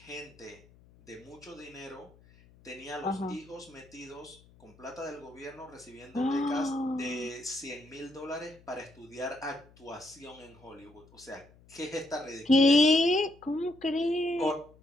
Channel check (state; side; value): noise; left; hum, 26 dB below the sound